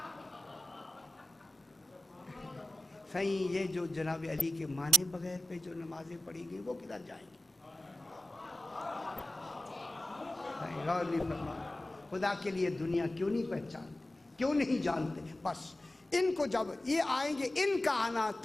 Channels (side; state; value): both; normal; correlation 0.91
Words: صحیح یہ جو جناب علی کے مانے بغیر پہ جو نمازیں پڑھی گئی وہ کدھر جائیں گی؟ غور نہیں فرمایا۔ خدا کے لیے دنیا کیوں نہیں پہچانتے، کیوں نہیں جانتے؟ بس ان کو جب یہ آئیں گے، ان کا آنا